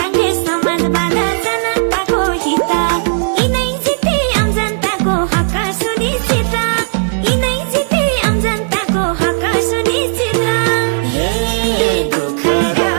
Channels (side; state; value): left; silent; digital silence